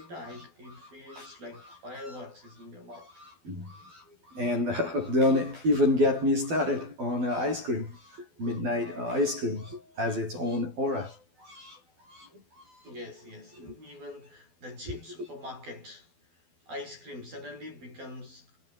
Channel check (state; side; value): late; left; 12 ms